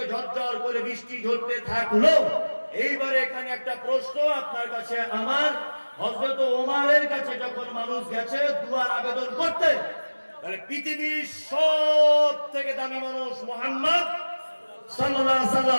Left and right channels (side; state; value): both; inverted; correlation -1.00